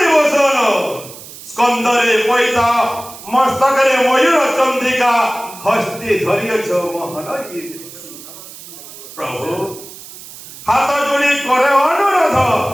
বসন স্কন্দরে পৈতা মস্তকরে ময়ূর চন্দ্রিকা হস্তে ধরিয়েছ মোহন প্রভু হাত যোড়ি করে অনুরোধ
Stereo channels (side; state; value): right; noise; hiss, 16 dB below the sound